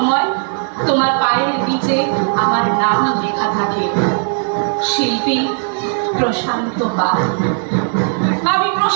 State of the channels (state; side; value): silent; left; 59 dB below the other